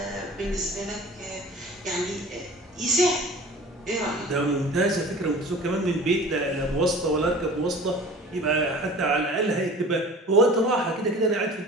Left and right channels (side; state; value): both; normal; correlation 0.42